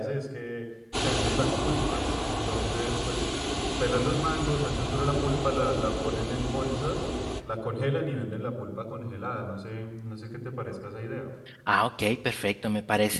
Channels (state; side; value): identical; both; correlation 1.00